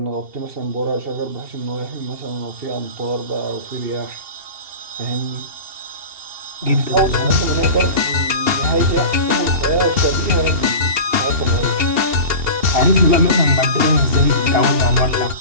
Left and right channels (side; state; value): left; late; 2.8 ms